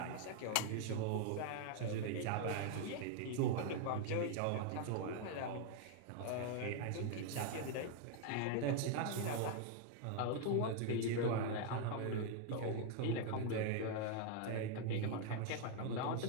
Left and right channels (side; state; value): both; different; correlation 0.00